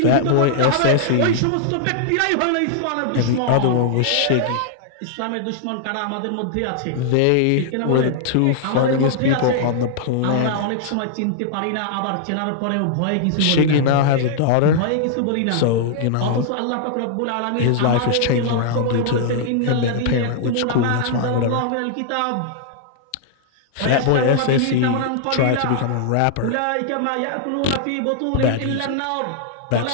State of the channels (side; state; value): both; different; correlation -0.01